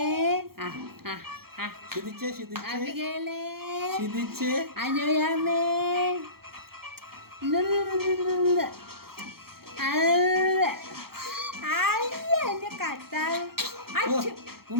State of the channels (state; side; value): late; left; 0.94 ms